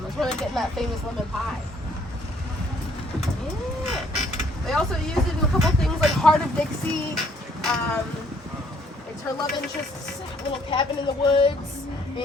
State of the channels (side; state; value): both; normal; correlation 0.64